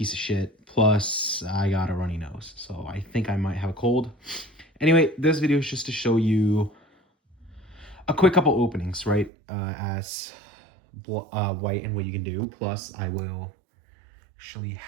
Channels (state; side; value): drops out; left; at 9.3 s